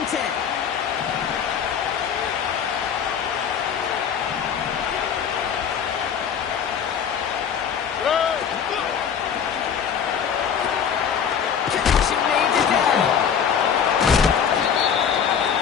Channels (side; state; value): right; quieter; 7.6 dB